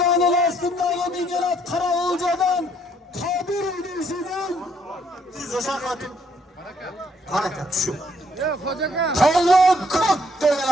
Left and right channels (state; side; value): normal; both; correlation 0.68